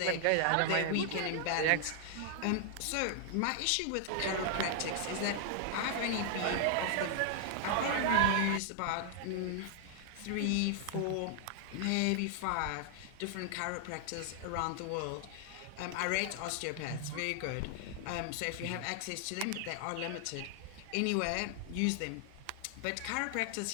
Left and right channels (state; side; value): different; both; correlation 0.00